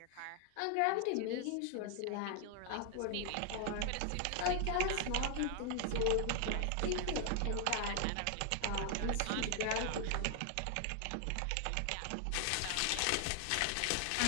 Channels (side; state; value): both; different; correlation 0.00